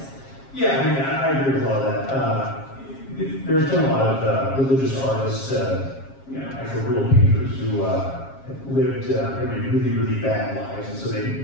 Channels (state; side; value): late; right; 7.4 ms